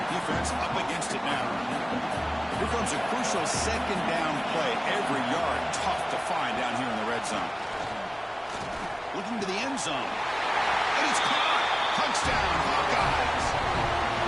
Defense up against it now. Here comes a crucial 2nd down play. Every yard tough to find down here in the red zone. Looking to the end zone. And it's caught. Touchdown, Hawkeyes.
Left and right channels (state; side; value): identical; both; correlation 1.00